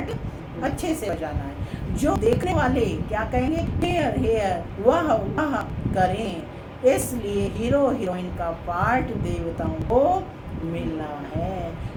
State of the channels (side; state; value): both; identical; correlation 1.00